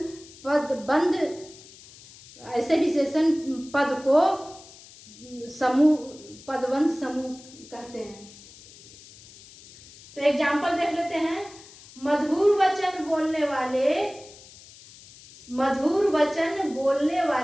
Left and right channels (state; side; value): noise; left; hiss, 21 dB below the sound